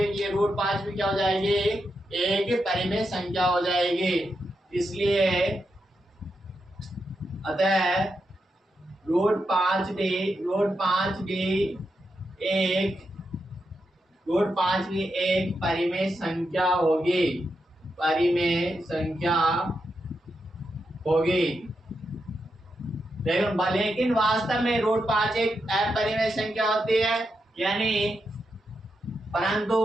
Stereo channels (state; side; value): normal; both; correlation 0.85